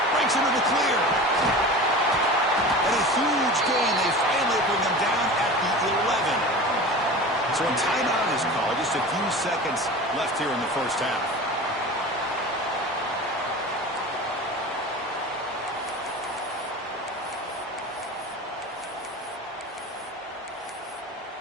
Breaks into the clear. And a huge gain. They finally bring him down at the 11. So a timeout is called. Just a few seconds left here in the 1st half.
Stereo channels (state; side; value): normal; both; correlation 0.34